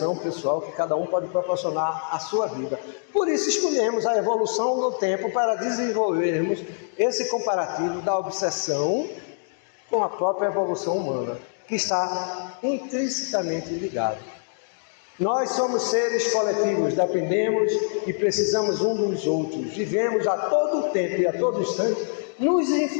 pessoal que cada um pode proporcionar à sua vida. Por isso escolhemos a evolução no tempo para desenvolvermos esse comparativo da obsessão com a própria evolução humana, que está intrinsecamente ligada. Nós somos seres coletivos, dependemos e precisamos um dos outros, vivemos a todo tempo e a todo instante nos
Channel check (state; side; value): silent; right; digital silence